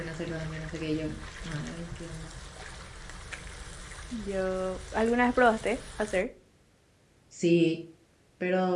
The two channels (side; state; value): both; identical; correlation 1.00